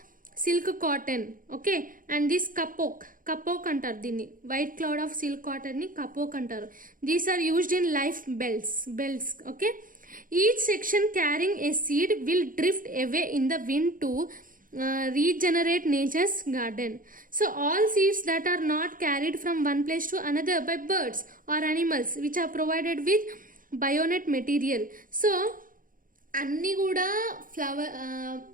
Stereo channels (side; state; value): left; late; 0.40 ms